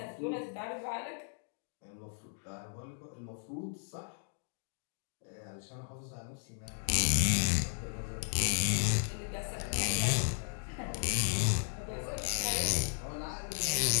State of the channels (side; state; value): right; silent; digital silence